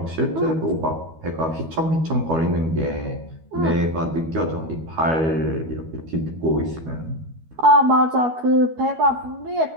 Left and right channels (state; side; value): late; left; 12 ms